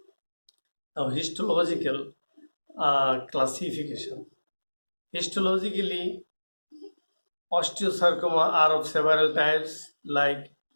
Now, histological classification. Histologically, osteosarcoma are of several types like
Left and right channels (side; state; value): both; inverted; correlation -1.00